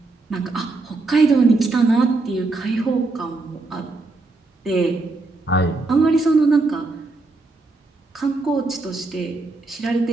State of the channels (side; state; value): left; quieter; 3.4 dB